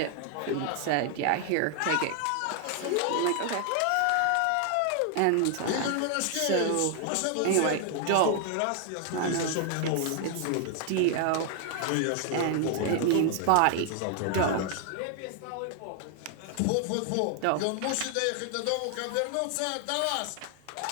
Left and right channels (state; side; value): different; both; correlation 0.00